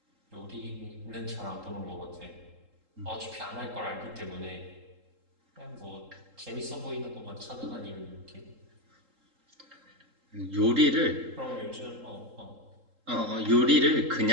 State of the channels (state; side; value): late; left; 3.8 ms